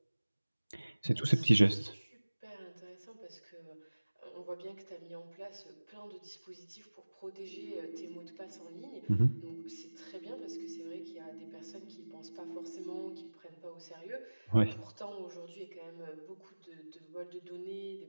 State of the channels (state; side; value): inverted; both; correlation -1.00